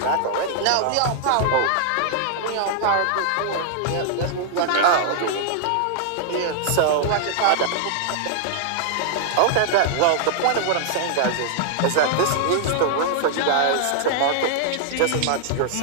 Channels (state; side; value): different; both; correlation 0.00